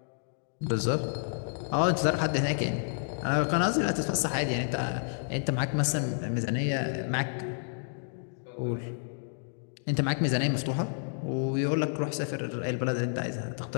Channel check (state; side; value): silent; right; digital silence